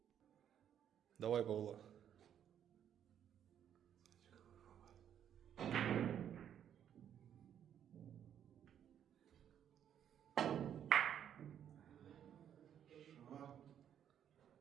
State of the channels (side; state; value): left; quieter; 9.5 dB